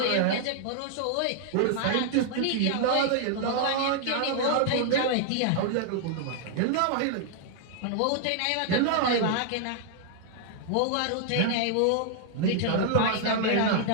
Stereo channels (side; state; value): both; different; correlation -0.01